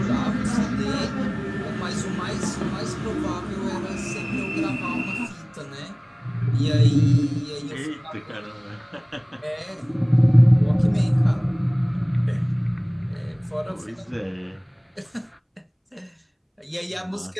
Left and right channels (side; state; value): both; identical; correlation 1.00